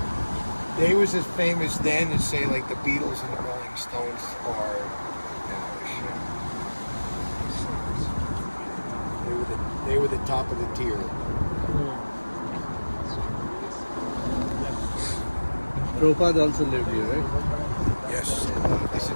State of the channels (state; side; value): inverted; both; correlation -1.00